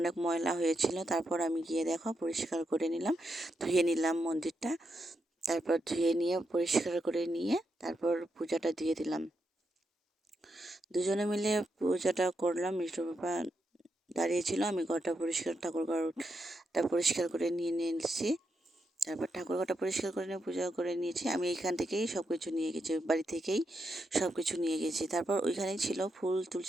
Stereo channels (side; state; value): both; normal; correlation 0.84